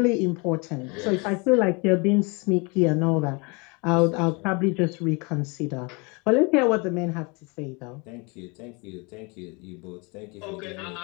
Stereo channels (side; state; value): right; quieter; 29.5 dB